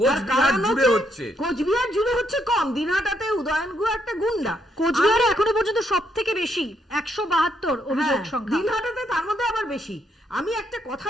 কোচবিহার জুড়ে হচ্ছে কম, দিনহাটাতে উদয়ন গুহ একটা গুন্ডা। কোচবিহারে এখনো পর্যন্ত সব থেকে বেশি 172 অভিযোগ সংখ্যা, দিনহাটাতে তার মধ্যে আবার বেশি। আমি একটা কথা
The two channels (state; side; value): normal; both; correlation 0.75